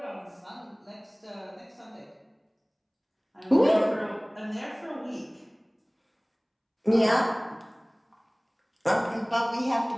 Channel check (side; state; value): both; identical; correlation 1.00